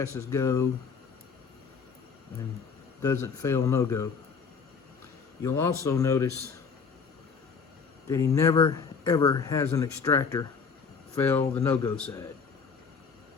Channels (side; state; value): right; quieter; 5.6 dB